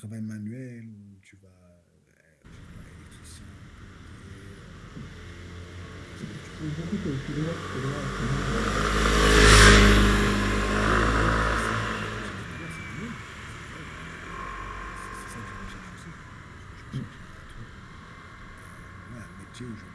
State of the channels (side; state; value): both; identical; correlation 1.00